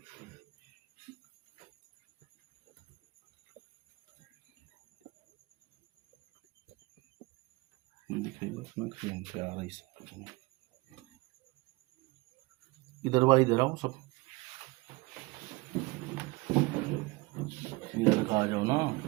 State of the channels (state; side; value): quieter; left; 23.6 dB